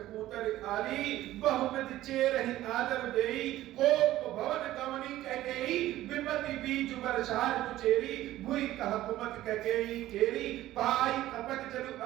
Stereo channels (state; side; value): quieter; left; 14.8 dB